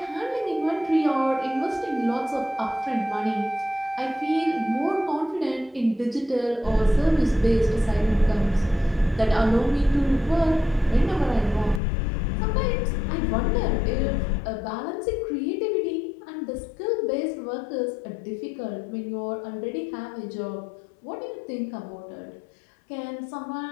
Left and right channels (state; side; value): drops out; right; at 11.8 s